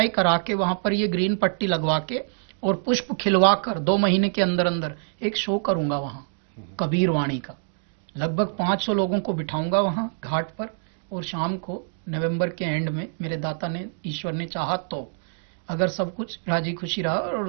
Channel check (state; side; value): silent; left; digital silence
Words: करा के वहाँ पर ये ग्रीन पट्टी लगवा के और पुष्प खिलवा कर 2 महीने के अंदर अंदर एक शो करूंगा वहाँ कबीर वाणी का। लगभग 500 लोगों को बिठाऊंगा वहाँ घाट पर, और शाम को नवंबर के एंड में मेरे दाता ने, ईश्वर ने चाहा तो, अगर सब कुछ राजी खुशी रहा और